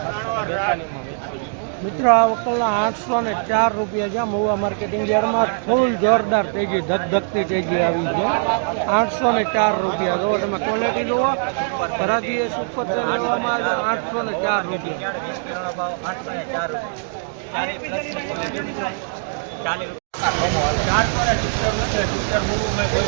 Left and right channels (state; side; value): silent; left; digital silence